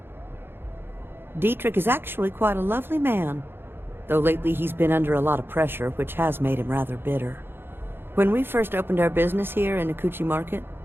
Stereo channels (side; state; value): left; late; 0.10 ms